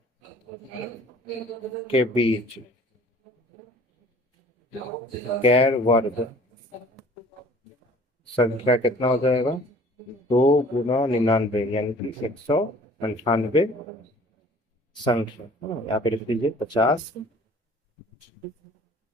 के बीच गैर वर्ग संख्या कितना हो जाएगा, 2 गुना 99 यानी कि 198 संख्या है ना। यहाँ पे लिख दीजिए 50 है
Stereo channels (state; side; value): normal; both; correlation 0.50